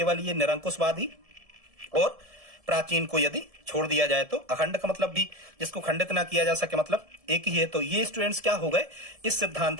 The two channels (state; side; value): late; left; 1.7 ms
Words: ये निरंकुशवादी और प्राचीन को यदि छोड़ दिया जाए तो अखंड का मतलब भी जिसको खंडित ना किया जा सके मतलब एक ही है। तो ये स्टूडेंट्स क्या हो गए, इस